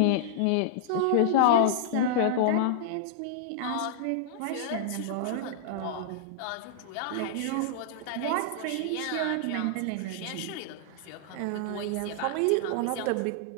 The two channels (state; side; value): different; both; correlation -0.01